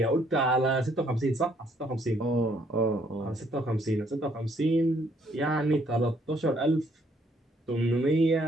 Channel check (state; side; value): normal; both; correlation 0.67